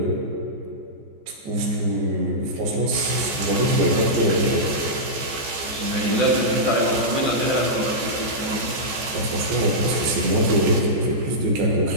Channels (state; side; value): late; left; 14 ms